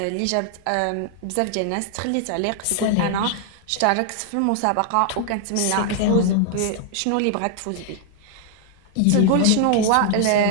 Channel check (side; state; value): both; different; correlation 0.00